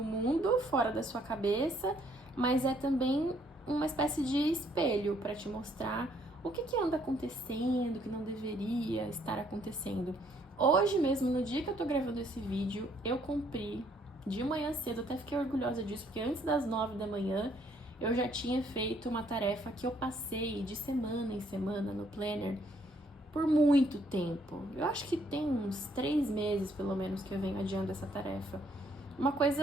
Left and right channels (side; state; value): both; normal; correlation 0.67